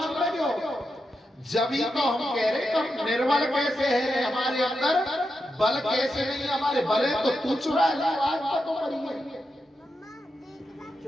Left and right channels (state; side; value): normal; both; correlation 0.87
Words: लगे हो। जब ही तो हम कह रहे तुम निर्बल कैसे है, हमारे अंदर बल कैसे नहीं, हमारे बल है तो तू चुरा ले। तो